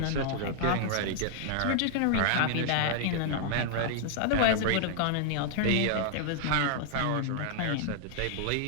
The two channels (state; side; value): different; both; correlation 0.00